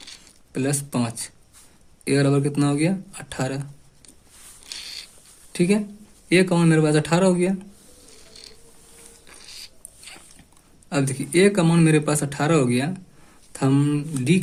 + 5, A बराबर कितना हो गया 18, ठीक है। A का मान मेरे पास 18 हो गया। अब देखिए A का मान मेरे पास 18 हो गया, तो हम D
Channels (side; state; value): both; identical; correlation 1.00